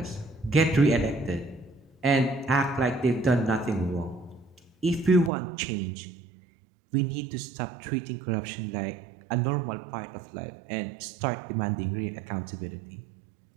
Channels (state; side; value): drops out; left; at 5.3 s